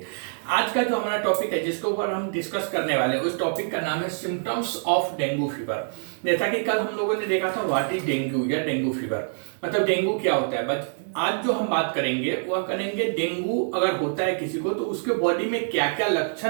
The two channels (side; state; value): left; silent; digital silence